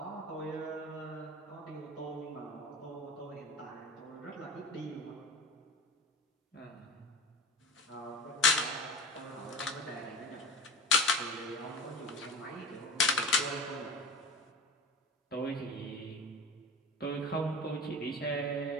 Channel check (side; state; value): both; normal; correlation 0.32